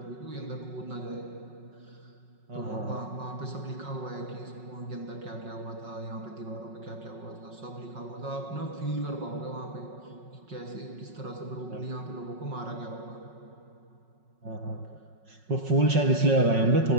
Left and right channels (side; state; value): left; late; 5.4 ms